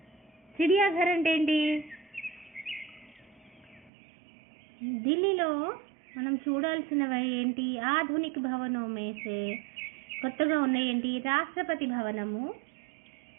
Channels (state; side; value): drops out; left; at 3.9 s